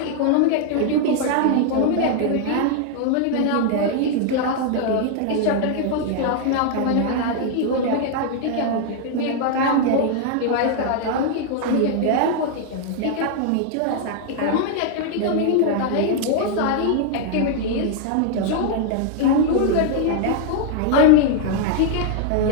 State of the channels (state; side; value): different; both; correlation 0.00